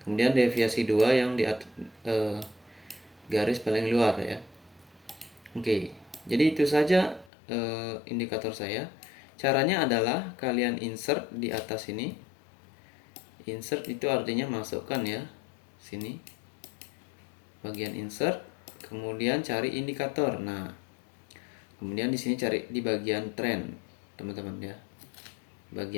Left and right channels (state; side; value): drops out; right; at 7.3 s